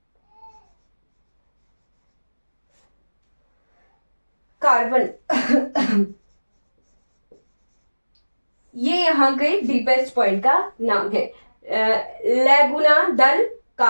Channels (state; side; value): inverted; both; correlation -1.00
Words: कार्बन ये यहाँ के डीपेस्ट पॉइंट का नाम है, लैगुना दल